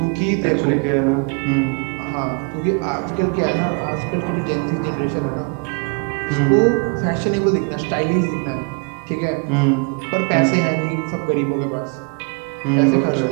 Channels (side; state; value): left; quieter; 35.8 dB